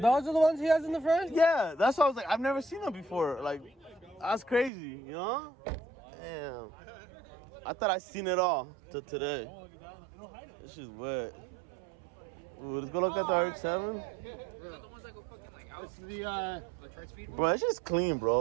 are the ones he has in the front? Yeah, that's why I was like, I've never seen them before. Like, that's crazy, you know? Damn. I thought I seen it all till today. This shit's wet. Ooh, let's go look at the RX-7. It's the Bro, it's just clean,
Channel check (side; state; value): left; drops out; at 4.7 s